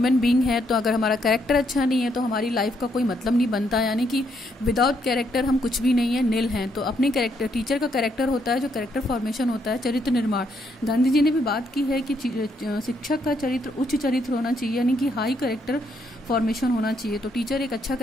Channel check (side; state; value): both; normal; correlation 0.74